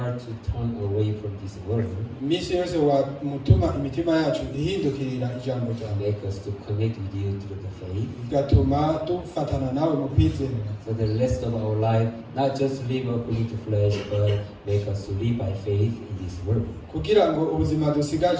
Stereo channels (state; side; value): identical; both; correlation 1.00